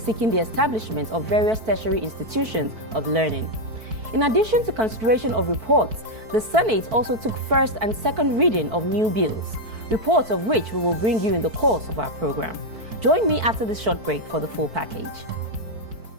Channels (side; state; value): left; late; 4.5 ms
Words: the establishment of various tertiary institutions of learning. In addition to consideration of reports, the Senate also took first and second reading of new bills, reports of which we will bring you in the course of our program. Join me after this short break for the full package.